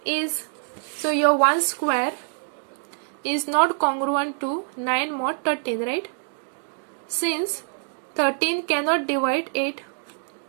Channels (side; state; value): left; silent; 62 dB below the other